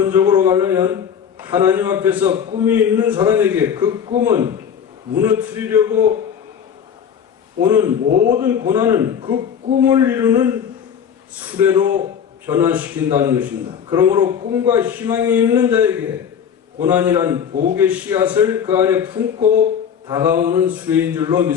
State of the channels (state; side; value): quieter; right; 7.9 dB